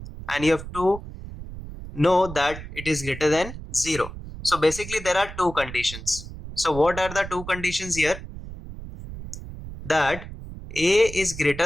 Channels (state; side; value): noise; right; rumble, 12 dB below the sound